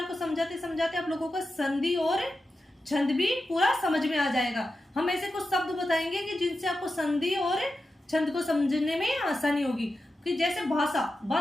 को समझाते समझाते आप लोगों को संधि और छंद भी पूरा समझ में आ जाएगा। हम ऐसे कुछ शब्द बताएंगे कि जिनसे आपको संधि और छंद को समझने में आसानी होगी। कि जैसे भाषा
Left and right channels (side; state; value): both; normal; correlation 0.91